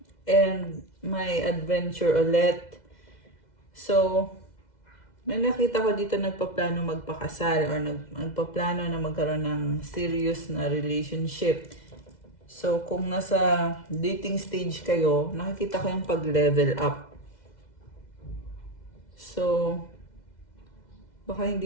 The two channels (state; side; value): late; right; 2.0 ms